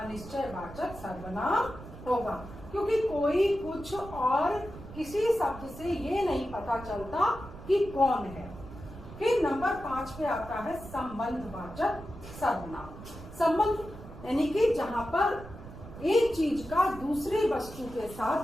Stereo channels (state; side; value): noise; right; rumble, 14 dB below the sound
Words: सर्वनाम होगा, क्योंकि कोई कुछ और किसी शब्द से ये नहीं पता चलता कि कौन है। फिर नंबर 5 पे आता है संबंधवाचक सर्वनाम। संबंध यानी कि जहां पर एक चीज का दूसरे वस्तु के